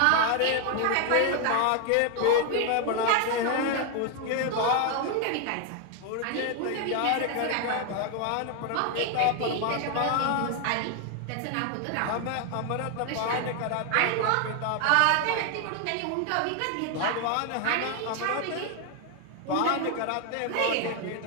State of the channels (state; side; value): different; both; correlation 0.00